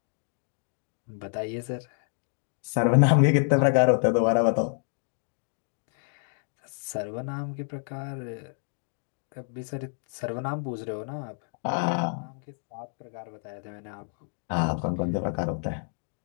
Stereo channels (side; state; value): right; silent; 57 dB below the other